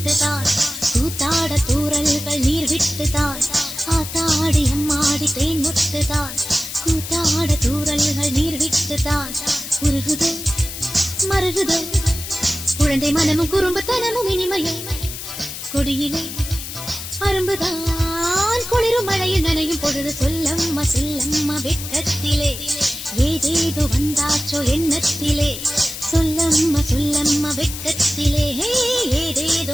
கூத்தாட தூரல்கள் நீர் விட்டுதான். ஆத்தாடி எம்மாடி தேன் மொட்டுதான் கூத்தாட தூரல்கள் நீர் விட்டுதான். உருகுதோ மருகுதோ குழந்தை மனமும் குறும்புத்தனமும் இனிமையும் கொடியிலே அரும்புதான் குளிரும் மழையில் நனையும் பொழுது சொல்லம்மா சொல்லம்மா வெட்கத்திலே ஏதேதோ வந்தாச்சோ எண்ணத்திலே. சொல்லம்மா சொல்லம்மா வெட்கத்திலே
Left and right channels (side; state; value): left; noise; hiss, 9 dB below the sound